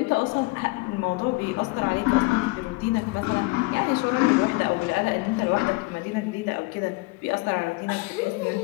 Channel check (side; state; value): right; quieter; 23.5 dB